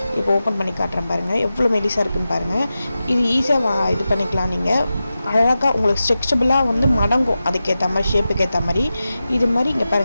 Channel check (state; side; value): inverted; both; correlation -0.93